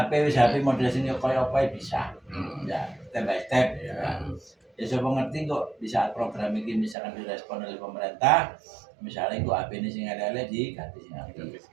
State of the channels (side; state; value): left; drops out; at 7.0 s